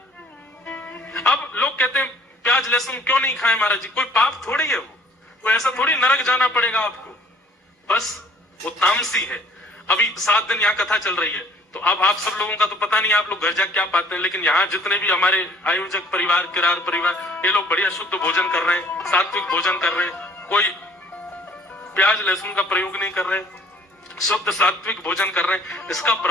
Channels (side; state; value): both; normal; correlation 0.57